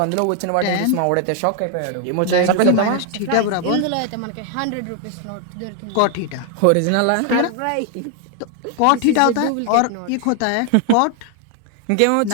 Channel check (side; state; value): both; different; correlation 0.00